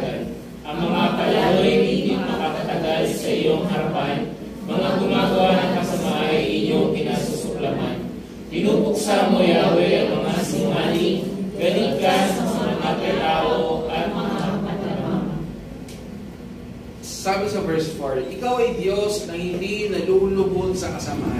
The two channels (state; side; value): identical; both; correlation 1.00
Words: Ang mga palaroy hindi makakatagal sa iyong harapan, mga gumagawa ng kasama ay inyong pinasusuklaman. Pinupuksa mo, Yahweh, ang mga sinungaling, galit ka sa mga tao at mga katamang. Sabi sa verse 4, ikaw ay Diyos na hindi nalulubog sa